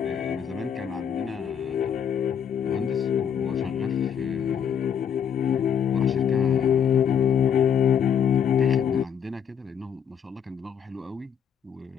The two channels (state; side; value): quieter; right; 8.0 dB